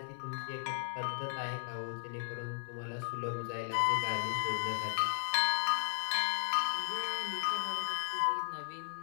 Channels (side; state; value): right; silent; 54 dB below the other